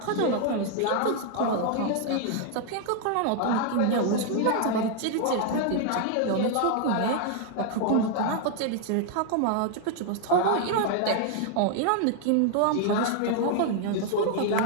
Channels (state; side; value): different; both; correlation 0.00